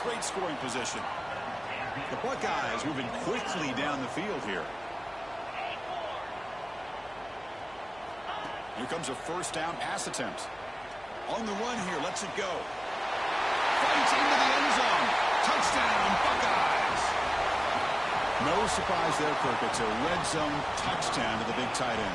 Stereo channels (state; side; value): noise; left; hum, 26 dB below the sound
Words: scoring position. The Buckeyes moving quickly down the field here. Here comes a first down pass attempt. On the run here, lets it go. Fights into the end zone. Touchdown, Buckeyes. No surprise there, Kirk. It's a red zone touchdown to the big tight